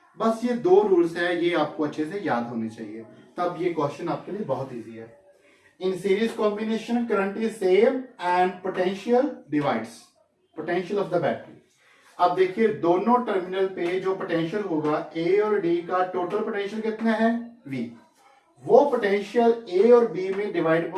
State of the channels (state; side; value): identical; both; correlation 1.00